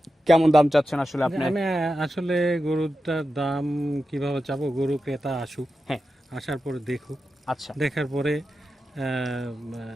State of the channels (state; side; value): normal; both; correlation 0.91